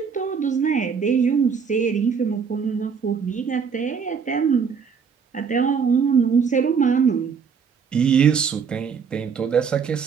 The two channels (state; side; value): quieter; left; 6.2 dB